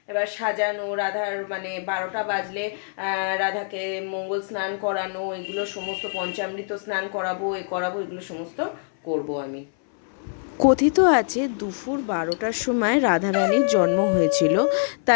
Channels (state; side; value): silent; right; 62 dB below the other